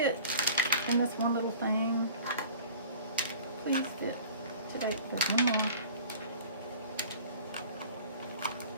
in this one little thing. Please fit today. There's one more.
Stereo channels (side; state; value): both; inverted; correlation -0.44